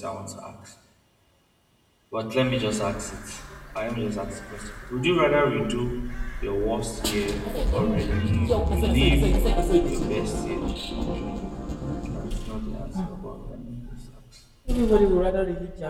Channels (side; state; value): both; identical; correlation 1.00